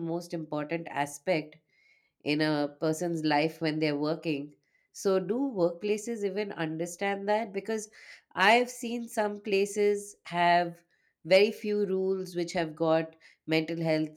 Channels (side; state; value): both; identical; correlation 1.00